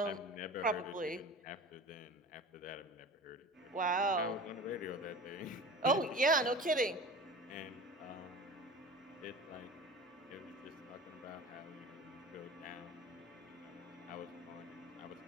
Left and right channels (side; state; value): both; normal; correlation 0.37